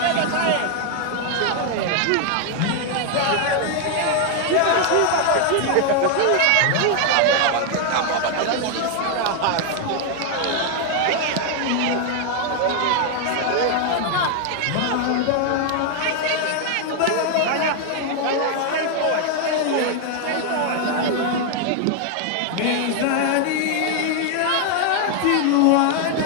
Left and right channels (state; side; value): different; both; correlation 0.00